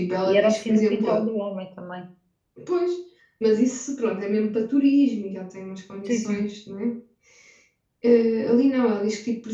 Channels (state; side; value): identical; both; correlation 1.00